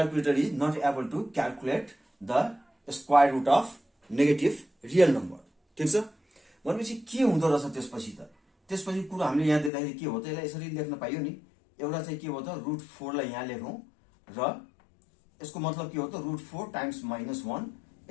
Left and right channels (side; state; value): right; drops out; at 9.7 s